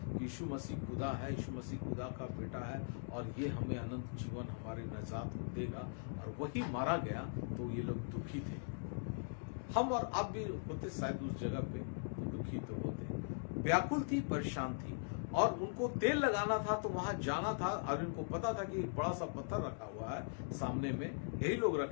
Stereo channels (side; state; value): right; silent; digital silence